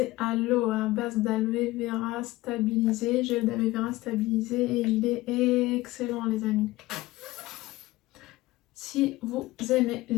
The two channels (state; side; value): quieter; right; 18.6 dB